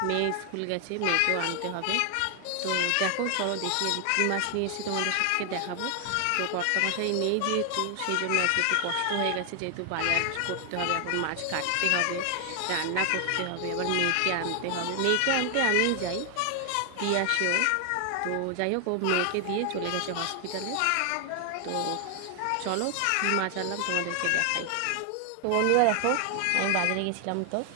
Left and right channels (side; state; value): both; different; correlation 0.00